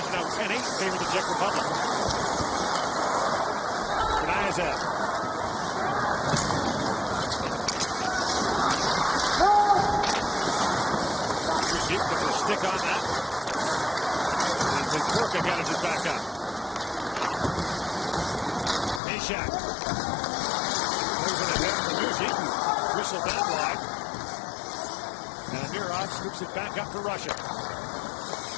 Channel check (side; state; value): right; drops out; at 19.0 s